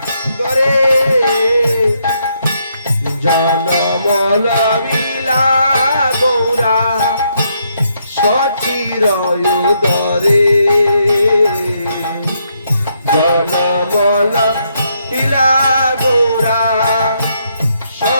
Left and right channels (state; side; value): inverted; both; correlation -0.76